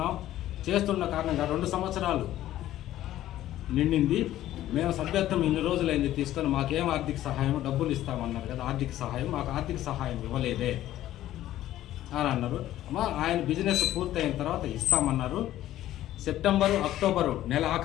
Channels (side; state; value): right; quieter; 13.6 dB